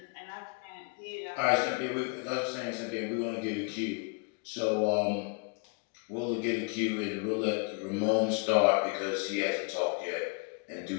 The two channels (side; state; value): right; quieter; 33.7 dB